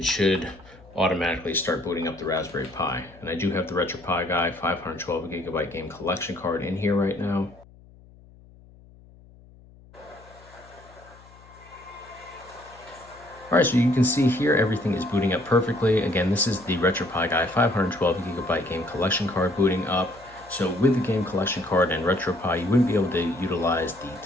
should automatically start booting up the Raspberry Pi. And I do have the RetroPie Guy 512 gigabyte game collection card in here right now. All Alright, so you can see here everything is booting up perfectly. Again, this is the RetroPie Guy 512GB game collection card booting up. So with the game collection card and RetroPie, you wouldn't be able to utilize the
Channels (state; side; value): noise; left; hum, 24 dB below the sound